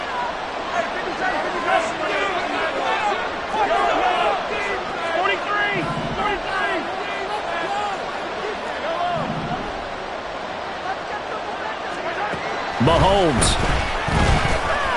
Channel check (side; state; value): both; identical; correlation 1.00